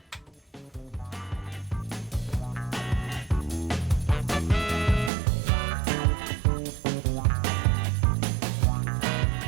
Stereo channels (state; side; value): drops out; left; at 5.1 s